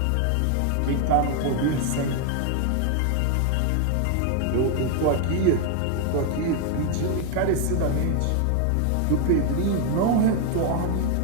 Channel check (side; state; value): both; different; correlation 0.00